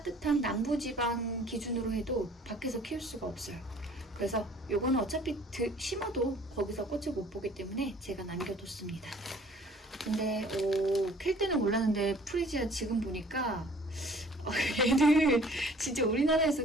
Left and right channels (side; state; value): both; normal; correlation 0.53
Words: 남부지방 기준으로 해도 밖에서 키울 수가 없어요. 그래서 요거는 어차피 심어도 거기서 꽃을 못 보기 때문에 제가 남겨뒀습니다. 근데 캘 때는 몰랐는데 프리지아 지금 보니까 얘는 진짜